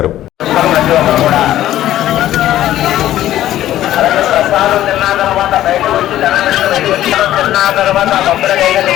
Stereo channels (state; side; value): quieter; right; 13.3 dB